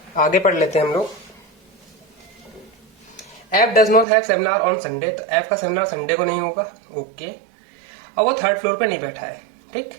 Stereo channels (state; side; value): drops out; left; at 4.0 s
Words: आगे पढ़ लेते हैं हम लोग। F does not have seminar on Sunday, तो एफ का सेमिनार संडे को नहीं होगा, ओके। और वो थर्ड फ्लोर पे नहीं बैठा है, ठीक,